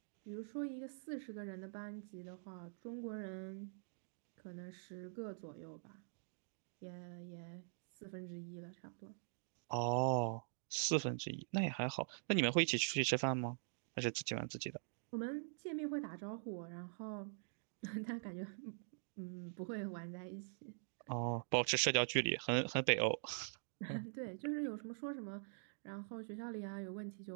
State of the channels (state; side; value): silent; left; digital silence